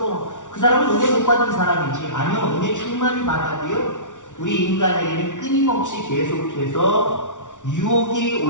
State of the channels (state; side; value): late; right; 0.87 ms